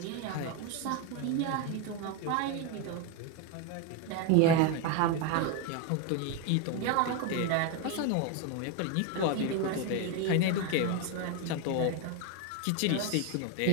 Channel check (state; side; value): different; both; correlation 0.02